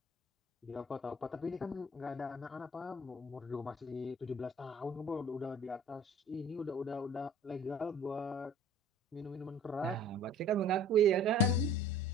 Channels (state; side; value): normal; both; correlation 0.48